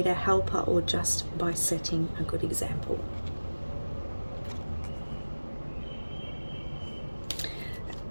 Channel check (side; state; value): both; inverted; correlation -1.00